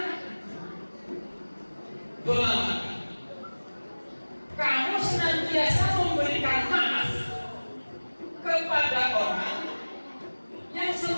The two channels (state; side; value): inverted; both; correlation -1.00